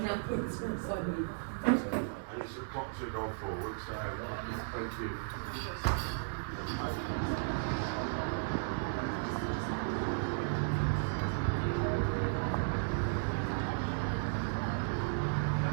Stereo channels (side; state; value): left; silent; digital silence